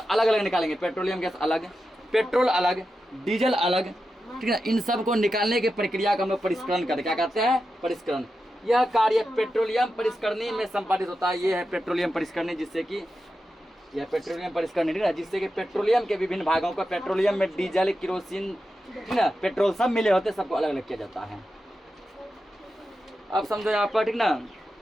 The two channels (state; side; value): normal; both; correlation 0.90